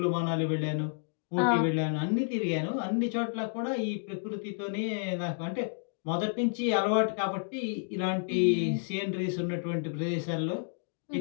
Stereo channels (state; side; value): silent; right; digital silence